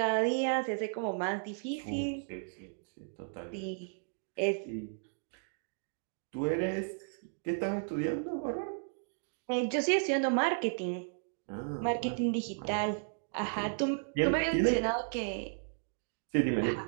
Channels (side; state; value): left; silent; digital silence